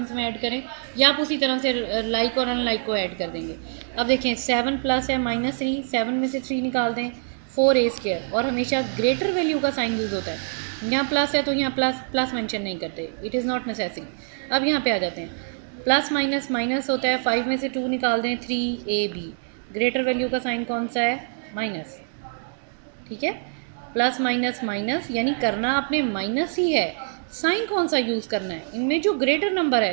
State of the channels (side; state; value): left; silent; digital silence